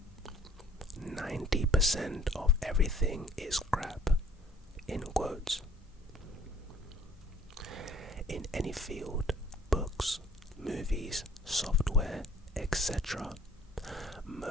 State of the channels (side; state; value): both; normal; correlation 0.57